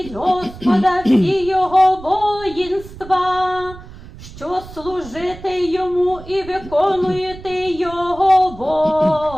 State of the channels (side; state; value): right; noise; rumble, 16 dB below the sound